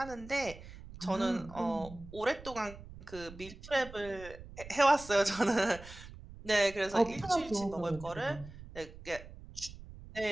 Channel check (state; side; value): noise; right; rumble, 16 dB below the sound